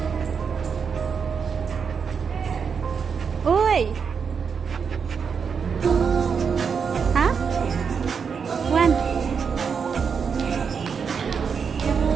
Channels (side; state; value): left; quieter; 6.2 dB